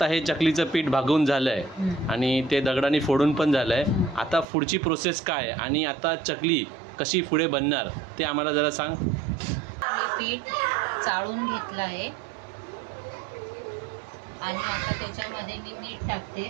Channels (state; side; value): drops out; left; at 4.5 s